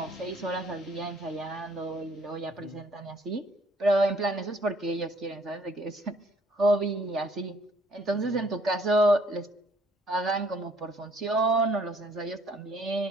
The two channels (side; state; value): both; normal; correlation 0.62